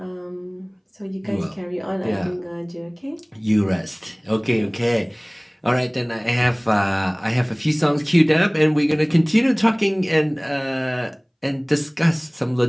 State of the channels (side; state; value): both; identical; correlation 1.00